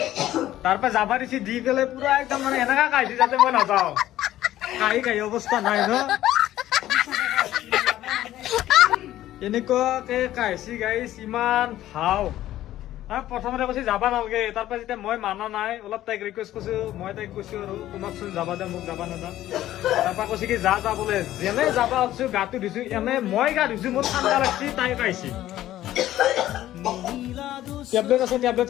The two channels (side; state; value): right; quieter; 13.7 dB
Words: তাৰপৰা যাবা দিছি দি পেলাই পুৰা একদম মানে এনেকা কাহিছে যাতে মই নাযাওঁ কাহি অৱস্থা নাই ন এনেকুৱাকে কাহিছি গাইছ ইমান ভাও প্ৰথমতে কৈছে যাবা নালাগে তাৰপৰা যেতিয়া মই মানা নাই অলপ তাইক ৰিকুৱেষ্ট কৰিছো মই তাইক কৈছো আৰু তোমাকচোন যাবা দে মোক যাবা নেদা তাৰপৰা কৈছে কি যা যা বোলে যেনে যাবা আছো গাটো ধুইছো এনে মই গা ধুইছো মোৰ ঠাণ্ডা লাগছি তাই কাহিছি টেবলেট আছে টেবলেট